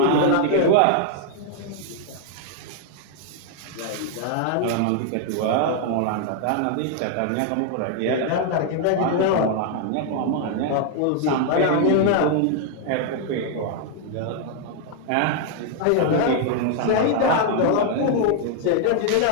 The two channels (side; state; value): both; different; correlation 0.00